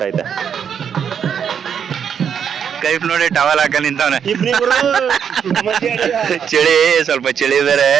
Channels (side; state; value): left; quieter; 7.8 dB